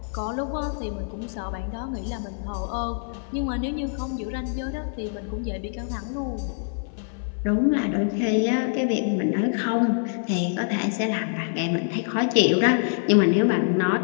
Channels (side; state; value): right; silent; 57 dB below the other